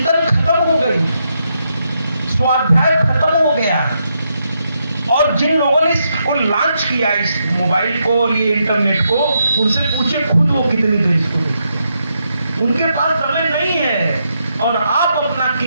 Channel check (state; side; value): inverted; both; correlation -0.81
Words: खत्म हो गई, स्वाध्याय खत्म हो गया। और जिन लोगों ने इसको लॉन्च किया, इस मोबाइल को, ये इंटरनेट को, उनसे पूछे खुद वो कितनी देर इसको देखते हैं। उनके पास समय नहीं है और आप अपना